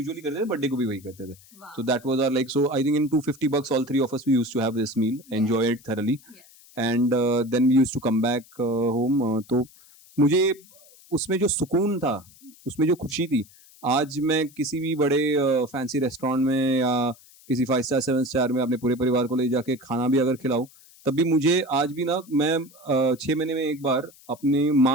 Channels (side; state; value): left; noise; hiss, 25 dB below the sound